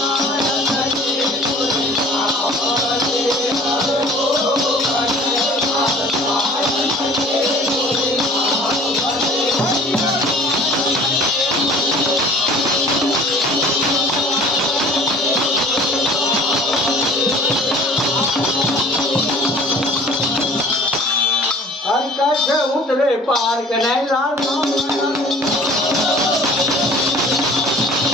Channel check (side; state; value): both; normal; correlation 0.47